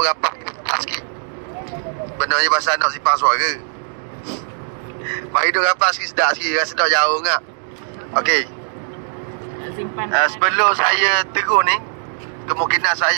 rapat sikit. Benarnya bahasa nak simpan suara. Mari duduk rapat sikit, sedap sikit, rasa sedap jauh ngak. Okey. Sebelum saya terus ni, kemungkinan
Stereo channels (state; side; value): silent; left; digital silence